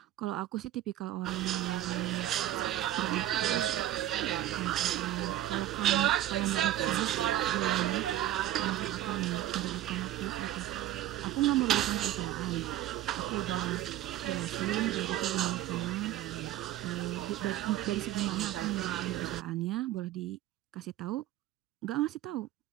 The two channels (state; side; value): quieter; left; 13.5 dB